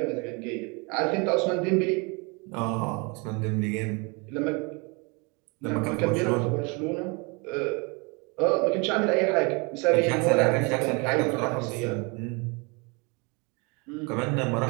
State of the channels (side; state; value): left; quieter; 30.3 dB